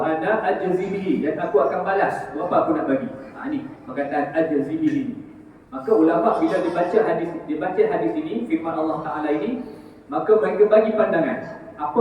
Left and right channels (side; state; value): both; identical; correlation 1.00